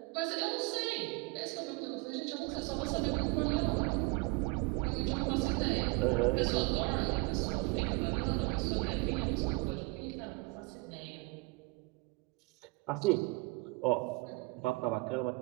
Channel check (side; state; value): left; quieter; 26.6 dB